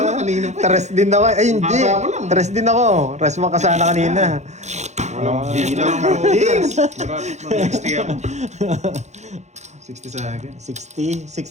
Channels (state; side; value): late; left; 0.33 ms